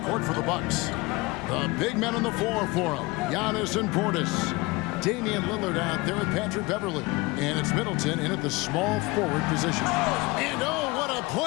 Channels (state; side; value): quieter; right; 23.2 dB